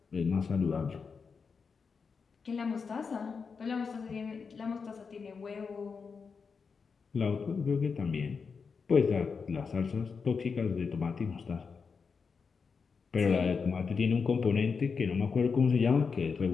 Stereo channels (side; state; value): right; quieter; 5.4 dB